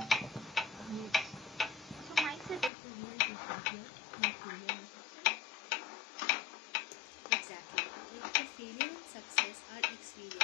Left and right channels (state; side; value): drops out; right; at 2.7 s